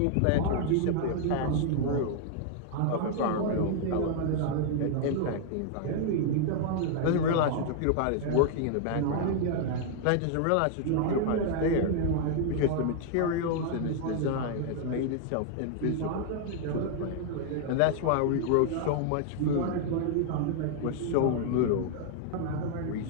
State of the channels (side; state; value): both; different; correlation 0.00